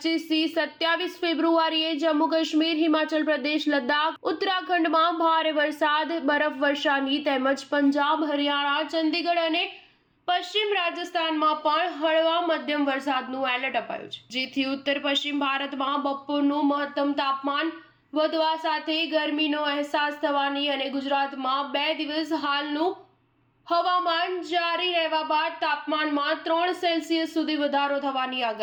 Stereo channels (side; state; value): both; identical; correlation 1.00